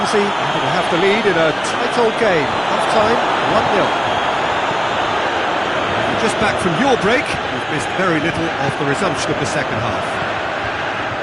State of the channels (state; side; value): identical; both; correlation 1.00